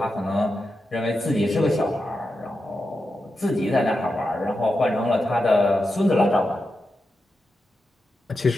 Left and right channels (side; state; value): both; normal; correlation 0.89